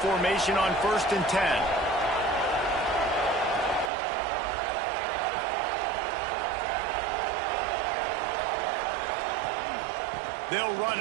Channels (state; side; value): drops out; left; at 3.9 s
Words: formation on 1st and 10. They'll run